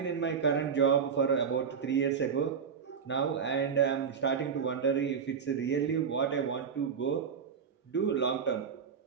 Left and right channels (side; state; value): left; quieter; 6.7 dB